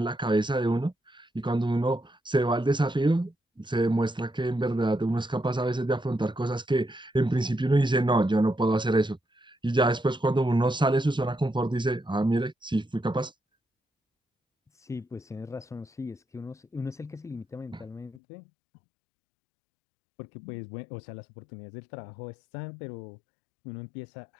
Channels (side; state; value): right; drops out; at 18.2 s